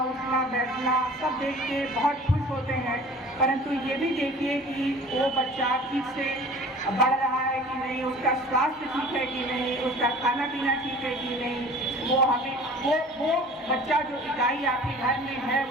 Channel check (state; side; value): normal; both; correlation 0.44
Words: बैठना सब देख के बहुत खुश होते हैं, परंतु ये भी देखिए कि वो बच्चा ठीक से बढ़ रहा है कि नहीं, उसका स्वास्थ्य ठीक है कि नहीं, उसका खाना पीना ठीक है कि नहीं। वो हमें वो बच्चा जो इकाई आपके घर में है